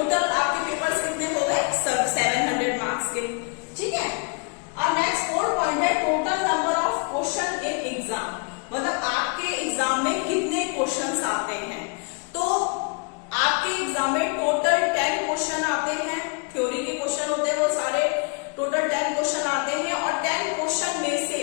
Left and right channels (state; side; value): quieter; right; 36.5 dB